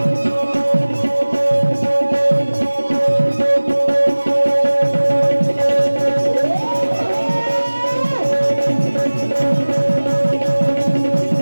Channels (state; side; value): inverted; both; correlation -1.00